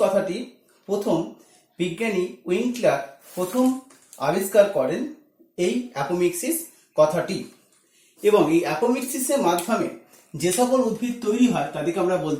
কথাটি প্রথম বিজ্ঞানী উইন্কলার প্রথম আবিষ্কার করেন এই অ্যাপোমিক্সিস কথাটি, এবং এই অ্যাপোমিক্সিসের মাধ্যমে যে সকল উদ্ভিদ তৈরি হয় তাদেরকে আমরা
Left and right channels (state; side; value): identical; both; correlation 1.00